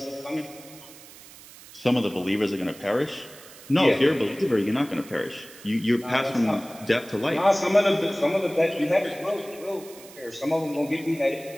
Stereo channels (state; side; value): noise; right; hiss, 19 dB below the sound